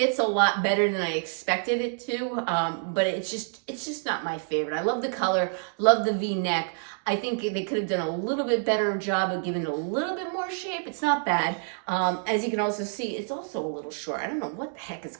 a lot better than I expected it to, but it's just not my favorite. I love the color, love the V-neck. I think they could have done a little bit better job of giving it a little bit more shape. It's not bad. As you can also see, it's also a little short. I don't know what the heck is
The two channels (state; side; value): silent; left; 60 dB below the other